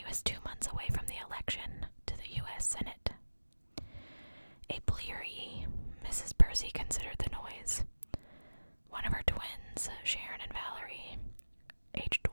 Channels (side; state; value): both; inverted; correlation -1.00